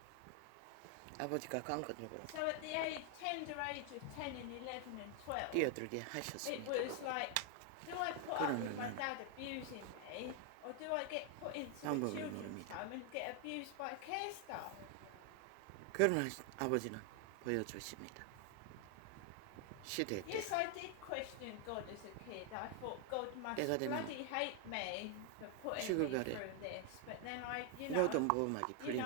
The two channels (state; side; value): different; both; correlation 0.00